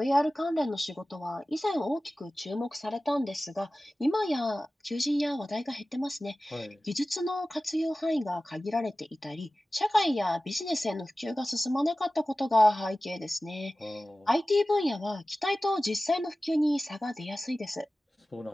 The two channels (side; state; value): both; normal; correlation 0.96